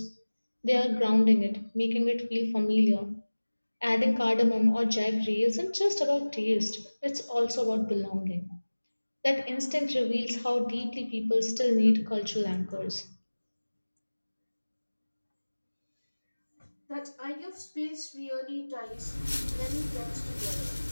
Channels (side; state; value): both; inverted; correlation -1.00